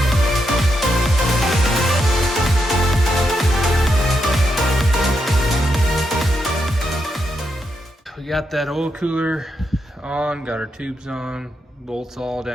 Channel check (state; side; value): normal; both; correlation 0.82